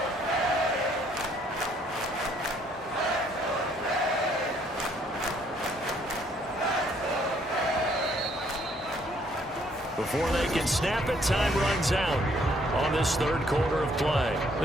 Before they can snap it, time runs out on this 3rd quarter of play.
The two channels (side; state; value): both; normal; correlation 0.65